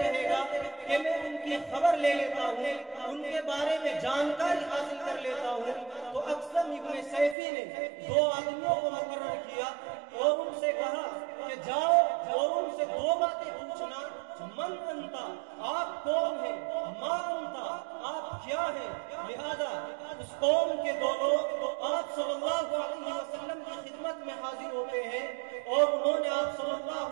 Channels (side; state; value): left; drops out; at 7.4 s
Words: رہے گا کہ میں ان کی خبر لے لیتا ہوں، ان کے بارے میں جانکاری حاصل کر لیتا ہوں. تو اکثر ابن سیفی نے 2 آدمیوں کو مقرر کیا اور ان سے کہا کہ جاؤ اور ان سے 2 باتیں پوچھنا. من انتا، آپ کون ہیں؟ ما انتا، آپ کیا ہیں؟ لہذا اس قوم کے 2 لوگ آپ صلی اللہ علیہ وسلم کی خدمت میں حاضر ہوتے ہیں اور انہوں نے آپ صلی